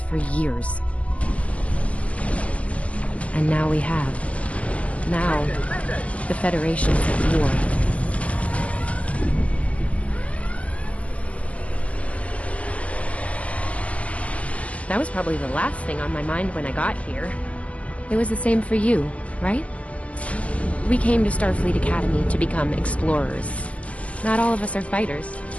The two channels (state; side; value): late; right; 0.064 ms